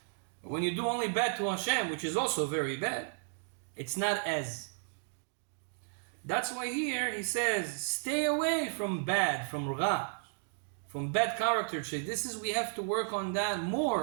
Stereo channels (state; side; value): silent; left; digital silence